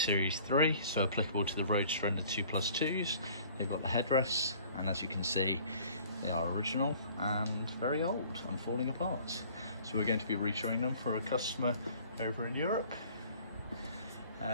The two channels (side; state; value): both; inverted; correlation -0.52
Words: 3, so applicable to the Roadster and the 2+2s. They've got the headrests, and as you can see, they are original and very old and falling apart. So we're going to be retouring them for a customer over in Europe.